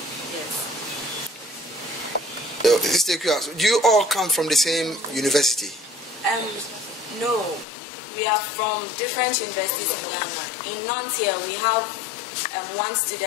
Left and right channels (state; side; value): drops out; right; at 7.7 s